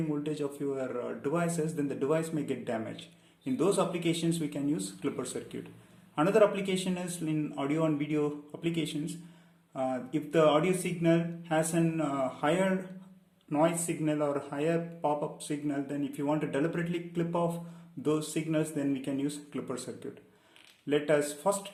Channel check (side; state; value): both; identical; correlation 1.00